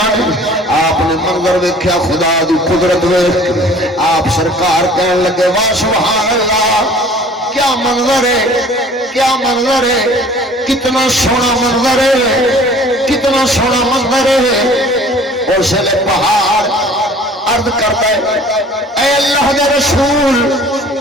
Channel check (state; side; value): normal; both; correlation 0.49